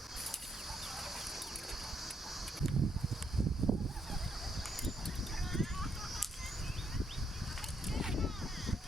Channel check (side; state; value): both; normal; correlation 0.75